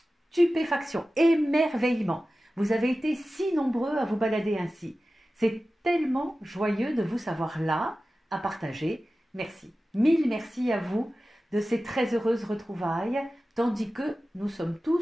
Stupéfaction, émerveillement. Vous avez été si nombreux à vous balader ainsi. C'est tellement joyeux de vous savoir là, à partager. Merci. Mille merci à vous de ces très heureuses retrouvailles, tandis que nous sommes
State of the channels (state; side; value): normal; both; correlation 0.95